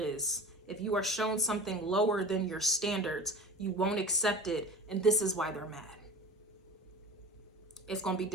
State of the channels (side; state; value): both; normal; correlation 0.36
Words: is, if you are shown something lower than your standards, you won't accept it, and this is why they're mad. It's going to be